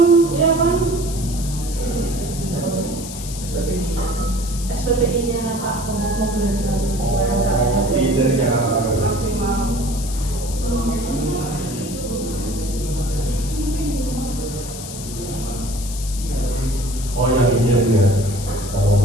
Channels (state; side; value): noise; left; hiss, 11 dB below the sound